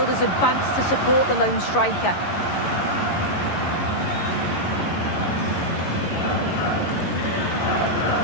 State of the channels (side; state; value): right; late; 11 ms